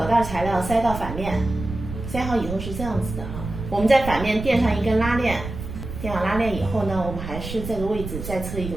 袋材料塞到反面，塞好以后是这样子的哈。我们在反面垫上一根拉链，垫好拉链以后呢，我们还是这个位置再侧一个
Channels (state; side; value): noise; right; rumble, 8 dB below the sound